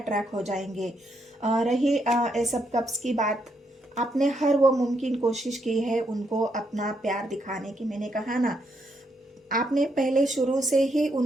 हो जाएंगे। रही एस ऑफ कप्स की बात, आपने हर वो मुमकिन कोशिश की है उनको अपना प्यार दिखाने की। मैंने कहा ना, आपने पहले शुरू से ही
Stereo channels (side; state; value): both; normal; correlation 0.77